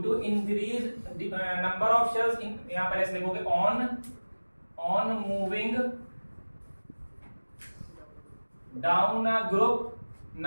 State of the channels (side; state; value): both; inverted; correlation -1.00